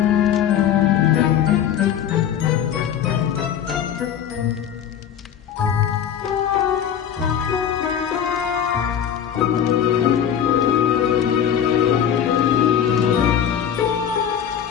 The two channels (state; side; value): quieter; right; 9.0 dB